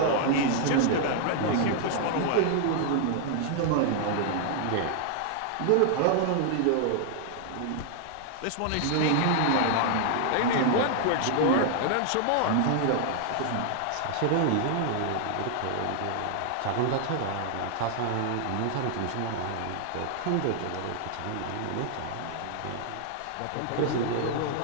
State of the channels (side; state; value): both; different; correlation 0.00